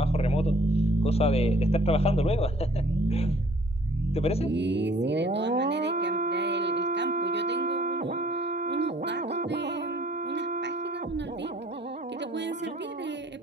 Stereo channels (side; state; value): both; normal; correlation 0.58